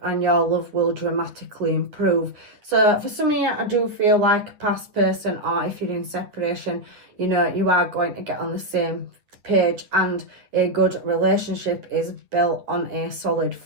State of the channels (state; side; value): late; left; 9.2 ms